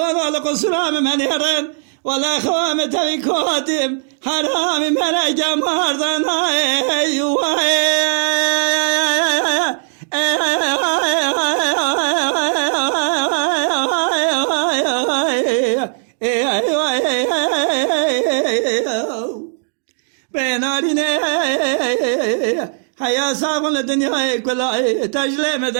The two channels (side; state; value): left; silent; 64 dB below the other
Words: لقصرام من هرن ولا خوام توی کوتیم حرام مرا گماردن بنارینه حیا سامون دنیا کلا تجلم